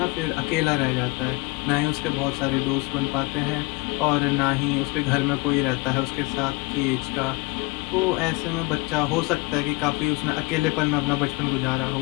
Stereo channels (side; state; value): right; quieter; 25.3 dB